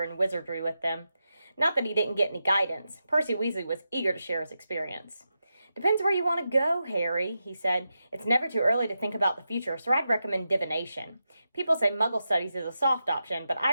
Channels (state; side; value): inverted; both; correlation -0.89